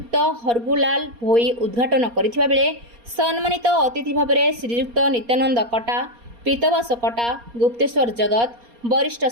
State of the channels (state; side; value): late; left; 4.2 ms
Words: हरगुलाल भोई उद्घाटन करथिबा बेले सम्मानित अतिथि भाव श्रीजुक्त नित्यानंद कटा, पीतवास कटा, गुप्तेश्वर जगत, वरिष्ठ